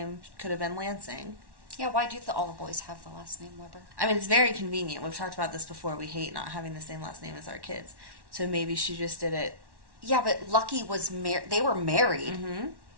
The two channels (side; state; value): left; late; 1.1 ms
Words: could have been Lansing. Yeah, why do all the boys have the last name Weber? I mean, it's very convenient. We've talked about this before. We hate not having the same last name as our kids. So maybe she just did it. Yeah, but Lucky was married. They were married.